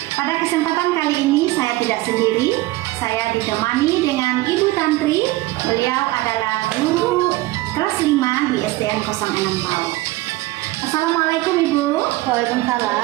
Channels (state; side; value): quieter; left; 18.9 dB